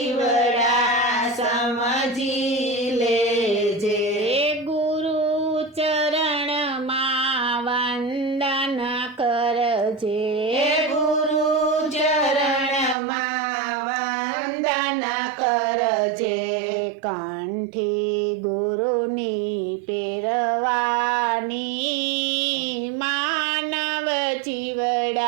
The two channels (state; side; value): drops out; left; at 13.0 s